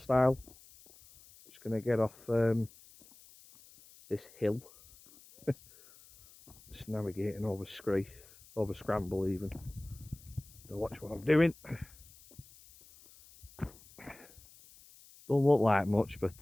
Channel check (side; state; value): left; noise; hiss, 23 dB below the sound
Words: Just going to get off this hill. Just navigating over Scree, over Scramble even. To watch what I'm doing. Don't look like much, but